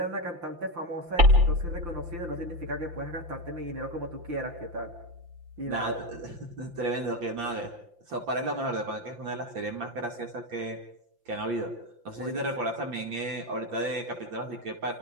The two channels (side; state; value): left; late; 5.8 ms